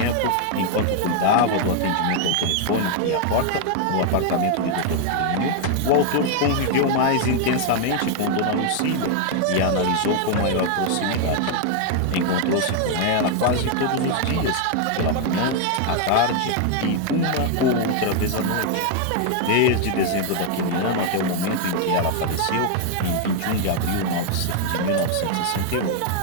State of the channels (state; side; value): different; both; correlation 0.00